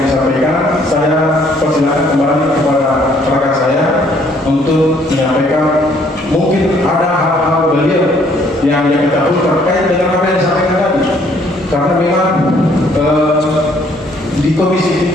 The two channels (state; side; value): normal; both; correlation 0.63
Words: disampaikan, saya persilakan kembali kepada rekan saya untuk menyampaikan mungkin ada hal-hal beliau yang ketahui terkait dengan apa yang disampaikan tadi, karena memang di